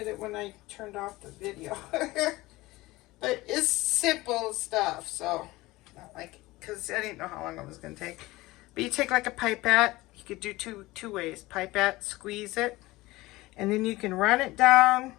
it when I turned off the video. But it's simple stuff, so not like, because I didn't know how long it was going to take. But you take like a pipette. You could do two ways. Pipette, squeeze it, and then you can run it down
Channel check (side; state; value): right; quieter; 19.7 dB